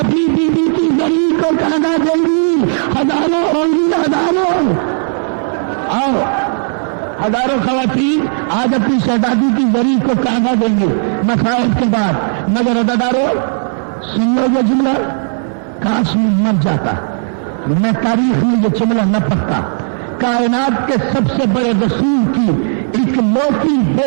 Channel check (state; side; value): silent; left; 71 dB below the other